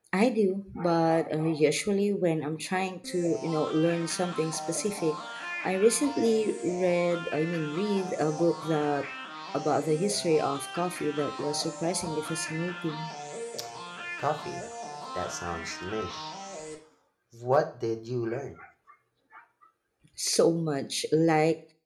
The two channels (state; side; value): identical; both; correlation 1.00